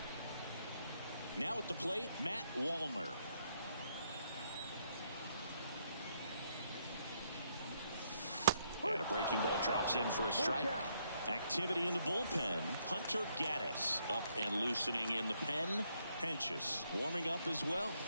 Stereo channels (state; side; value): inverted; both; correlation -0.74